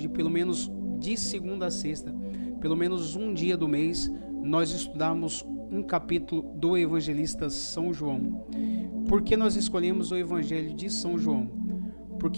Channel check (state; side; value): inverted; both; correlation -1.00